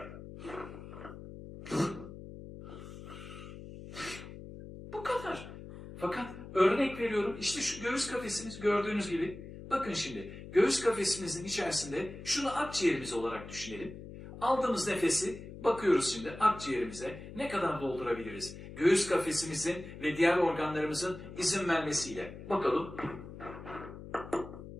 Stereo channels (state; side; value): noise; left; hum, 13 dB below the sound